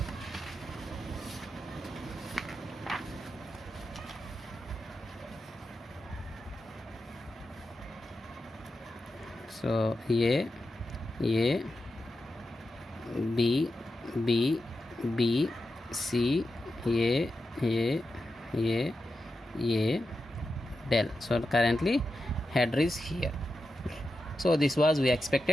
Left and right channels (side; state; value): both; normal; correlation 0.89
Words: So A, B, B, B, C, A, del. So currently header is here. So this was we